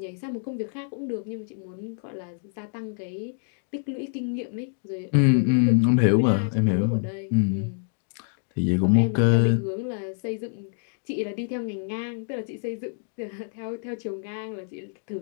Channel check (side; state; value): right; silent; 61 dB below the other